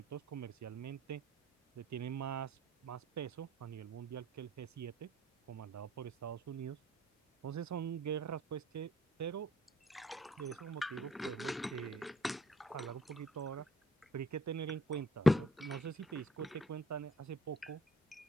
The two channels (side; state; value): both; normal; correlation 0.61